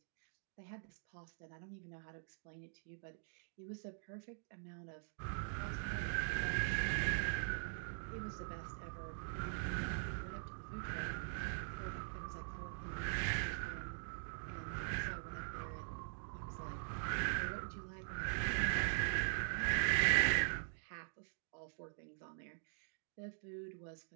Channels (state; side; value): silent; left; digital silence